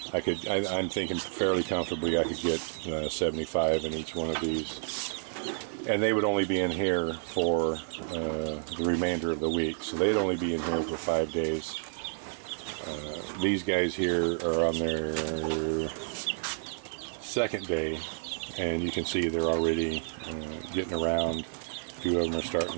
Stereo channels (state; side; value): silent; left; digital silence